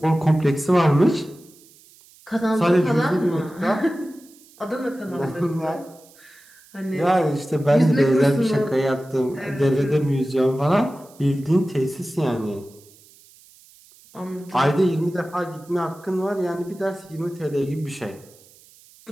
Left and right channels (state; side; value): noise; right; hiss, 26 dB below the sound